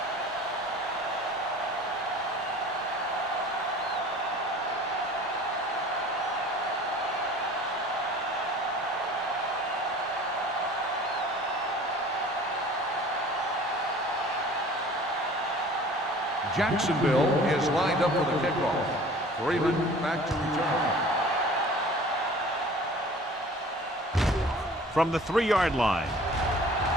Jacksonville is lined up for the kickoff. Freeman back to return. From the 3-yard line.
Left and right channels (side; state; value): both; normal; correlation 0.46